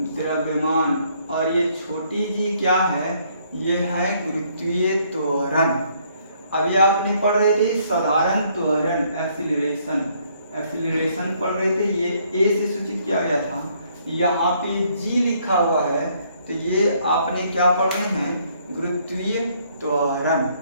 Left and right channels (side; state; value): both; inverted; correlation -0.67